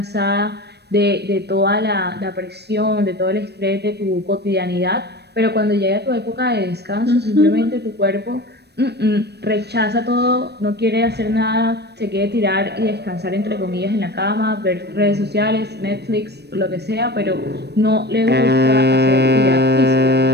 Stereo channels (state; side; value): late; left; 0.48 ms